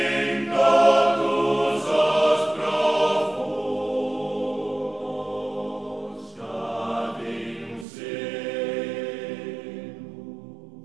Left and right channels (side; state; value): left; drops out; at 7.9 s